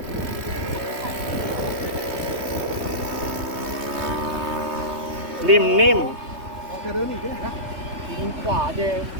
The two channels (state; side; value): late; left; 3.2 ms